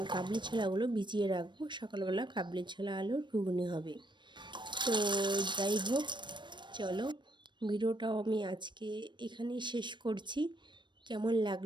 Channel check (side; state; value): left; late; 0.22 ms